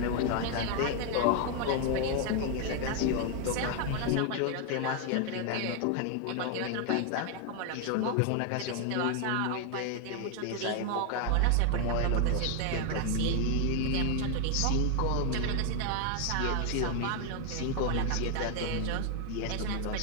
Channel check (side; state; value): both; different; correlation 0.00